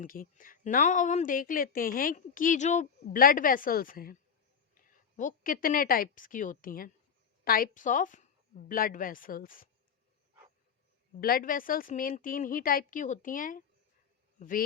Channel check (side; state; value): right; quieter; 6.9 dB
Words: की। नाउ अब हम देख लेते हैं कि जो ब्लड वेसल्स हैं वो कितने टाइप्स की होती हैं। Types of blood vessels, blood vessels main 3 ही टाइप की होती हैं,